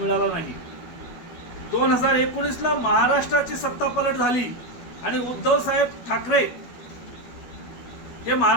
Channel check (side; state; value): right; late; 12 ms